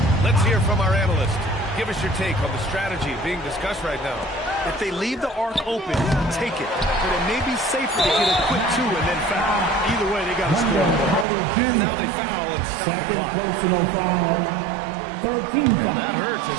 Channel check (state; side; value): drops out; left; at 11.2 s